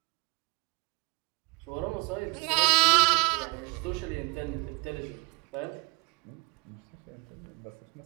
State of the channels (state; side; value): quieter; left; 28.5 dB